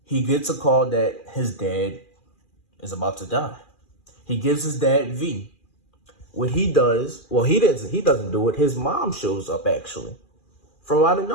He gets a call that his dad is about to die. He gives his dad V. What he does, well, he doesn't do it. His mom shows up, actually, from out of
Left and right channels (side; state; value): right; late; 2.4 ms